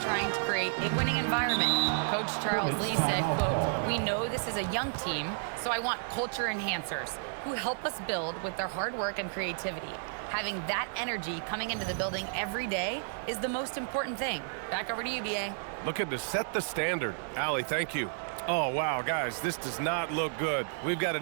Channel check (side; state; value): left; silent; 57 dB below the other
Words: trying to create a winning environment. Coach Charles Lee said, quote, "We know this is a young team, so I want culture enhancers who help us build with their hard work and creativity. Having that energy coming into the building every day is the most important thing." Back over to you, BA. Looking to set the standard. Allie, thank you. Oh, wow, guys, this does not look good. We've got